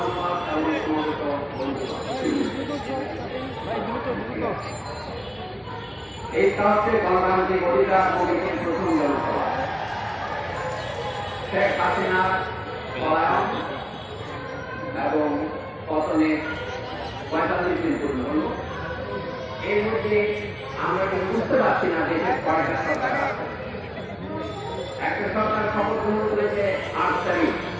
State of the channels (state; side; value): identical; both; correlation 1.00